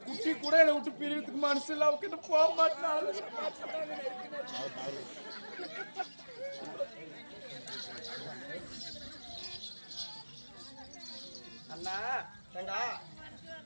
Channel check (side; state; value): both; inverted; correlation -1.00